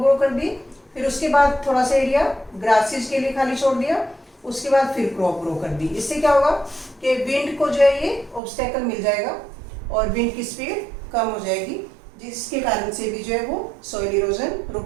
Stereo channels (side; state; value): left; drops out; at 8.4 s